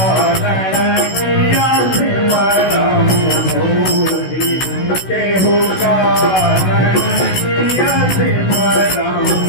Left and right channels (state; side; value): late; right; 16 ms